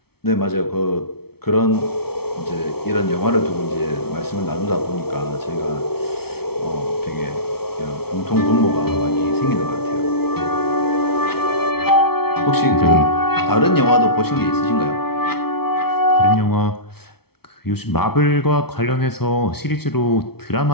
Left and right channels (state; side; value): late; right; 0.95 ms